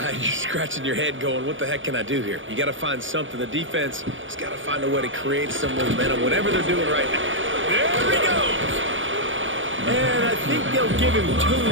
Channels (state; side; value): late; left; 0.56 ms